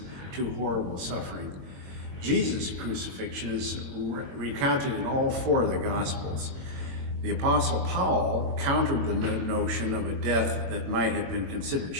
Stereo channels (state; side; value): late; left; 22 ms